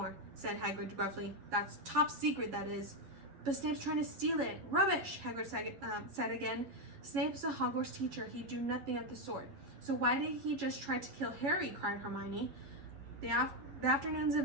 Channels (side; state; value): left; late; 11 ms